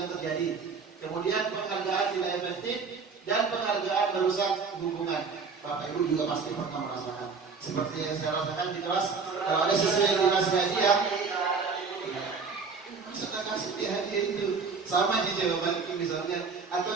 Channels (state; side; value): quieter; left; 5.0 dB